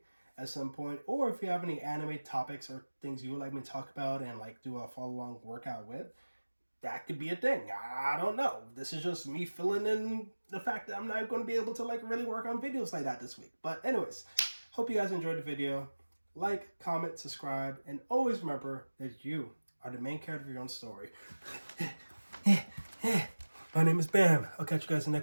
at some point. Or if you have any anime topics or things you would like me to talk about and like do a follow-along workout with, that could be a thing. I don't know. This is just me filling in the fact that I'm not going to be able to like really work on videos like that this week. But anyways, hope you guys enjoyed the video. Like, comment, subscribe, and always remember that you are the main character of your own story. My name is Bam. I'll catch you guys in the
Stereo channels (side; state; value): both; inverted; correlation -1.00